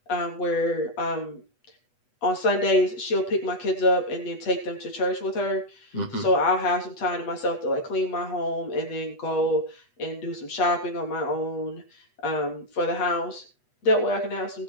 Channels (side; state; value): right; late; 8.1 ms